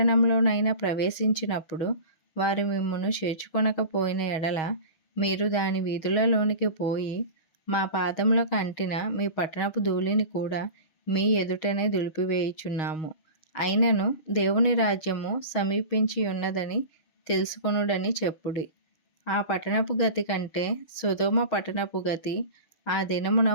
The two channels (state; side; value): late; right; 6.3 ms